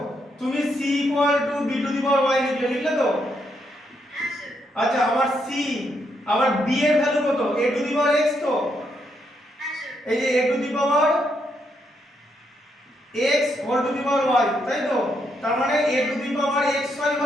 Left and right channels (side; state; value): both; normal; correlation 0.78